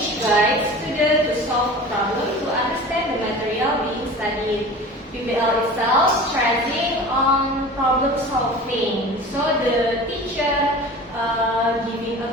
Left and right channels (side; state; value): both; normal; correlation 0.38